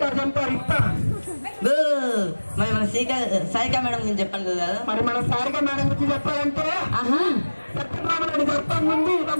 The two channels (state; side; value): inverted; both; correlation -1.00